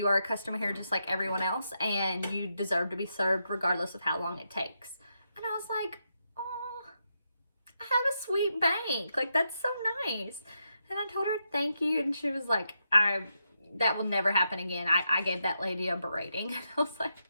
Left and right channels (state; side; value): inverted; both; correlation -0.84